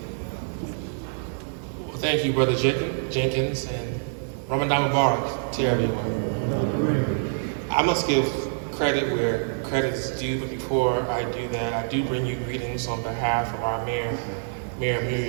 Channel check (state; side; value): silent; left; 61 dB below the other